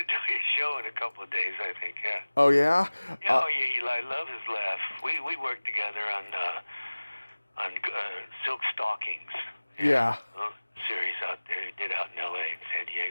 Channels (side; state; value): both; inverted; correlation -1.00